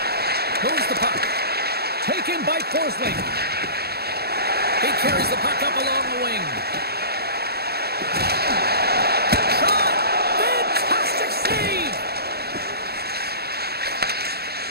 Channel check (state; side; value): late; left; 0.46 ms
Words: Forsling. He carries the puck up along the wing. Shot! Fantastic save!